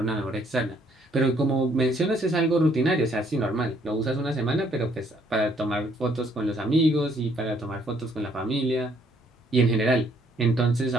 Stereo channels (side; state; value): both; normal; correlation 0.66